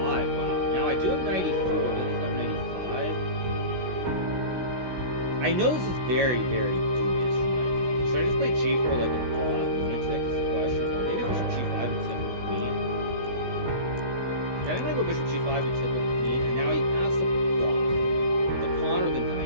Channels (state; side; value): late; left; 16 ms